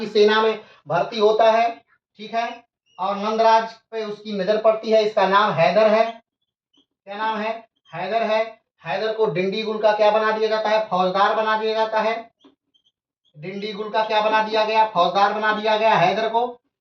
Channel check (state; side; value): identical; both; correlation 1.00